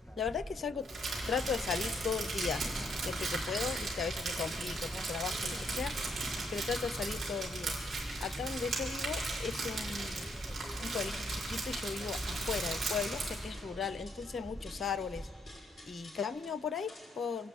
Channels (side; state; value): both; normal; correlation 0.73